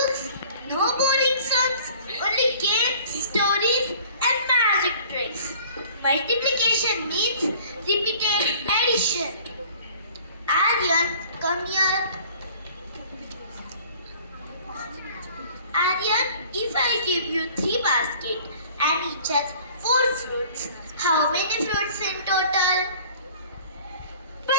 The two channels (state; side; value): inverted; both; correlation -0.50